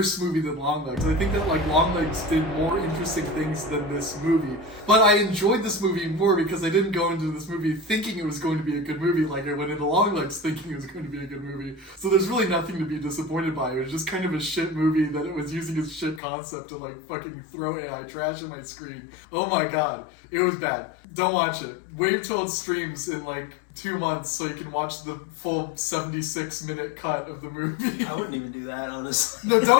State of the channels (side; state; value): right; drops out; at 16.2 s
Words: movie than Longlegs. I think that like Longlegs did more interesting things than this movie. But I enjoyed this movie more because I didn't go into this movie thinking it was going to be a good movie like I went into Longlegs thinking it was going to be a good movie. So there's really nothing to be disappointed by. It was just kind of a shit movie that it was using its shit concept to like fucking throw AI trash on my screen. Oh my god. It was bad. Don't watch it. Wait till it streams in like 2 months so you can watch the full 76-minute cut of the movie. I wouldn't even do that, honestly. No,